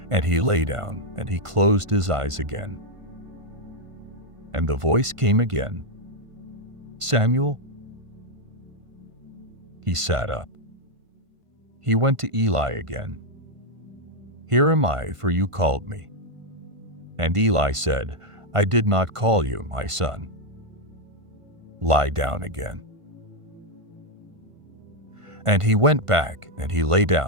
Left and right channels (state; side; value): late; left; 1.5 ms